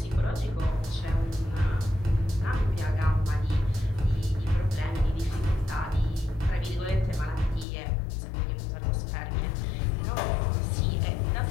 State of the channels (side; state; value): right; drops out; at 7.7 s